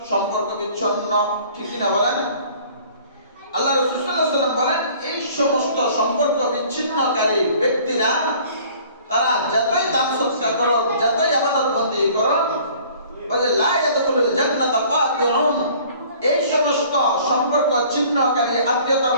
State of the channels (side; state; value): both; inverted; correlation -0.52